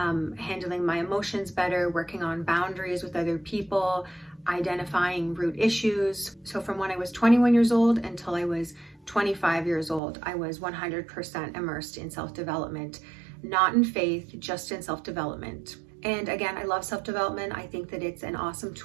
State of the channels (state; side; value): drops out; left; at 10.0 s